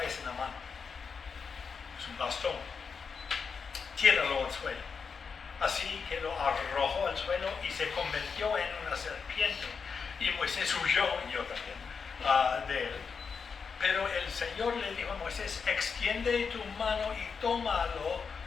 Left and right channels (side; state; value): right; quieter; 5.7 dB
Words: en la mano? Es un bastón. Tíralo al suelo. así que lo arrojó al suelo y se convirtió en una serpiente. Y Moisés huyó, y yo también, de él. Pero el Señor le dijo a Moisés, extiende tu mano y tómalo